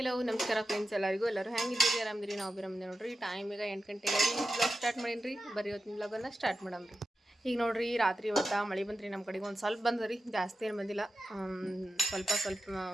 ನಮಸ್ಕಾರ friends ಎಲ್ಲರೂ ಹೆಂಗಿದ್ದೀರಿ ಆರಾಮದಿರಿ ನಾವು ಆರಾಮದಿ ನೋಡ್ರಿ ಟೈಮ್ ಈಗ 8 ಗಂಟೆಗೆ ಬ್ಲಾಗ್ ಸ್ಟಾರ್ಟ್ ಮಾಡೀನಿ ಬರೀ ಇವತ್ತಿನ ಬ್ಲಾಗನ್ನು ಸ್ಟಾರ್ಟ್ ಮಾಡಮ್ರಿ ಈಗ ನೋಡ್ರಿ ರಾತ್ರಿ ಇವತ್ತು ಮಳೆ ಬಂದ್ರಿ ನಮ್ಮ ಕಡೆಗೆ ಒಂದು ಸ್ವಲ್ಪ ಬಂದ್ರಿ ಜಾಸ್ತಿ ಏನು ಬಂದಿಲ್ಲ ಸ್ವಲ್ಪ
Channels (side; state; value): both; normal; correlation 0.91